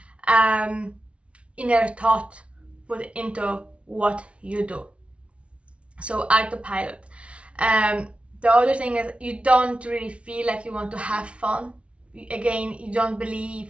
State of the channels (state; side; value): late; left; 0.061 ms